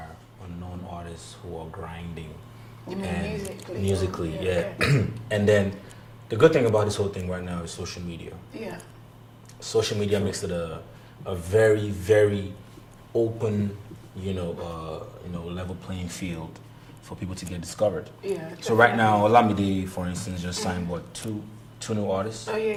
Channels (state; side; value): identical; both; correlation 1.00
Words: unknown artists who are grinding. You mean musically? Yeah. And then the good thing about this whole thing right now is social media. Yeah. Social media makes it a very, very open, level playing field for people to get discovered. Yeah. So right now, Olamide, for instance, just signed two new artists. Oh